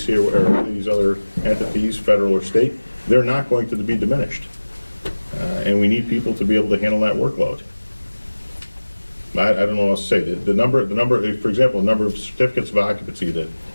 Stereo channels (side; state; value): both; inverted; correlation -1.00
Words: or these other entities, federal or state, they're not going to be diminished. And we need people to be able to handle that workload. I don't know what else to say. The number, for example, the number of certificates of occupancy is